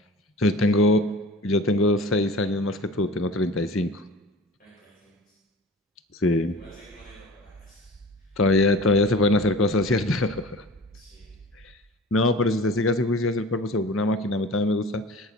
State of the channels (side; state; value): both; normal; correlation 0.40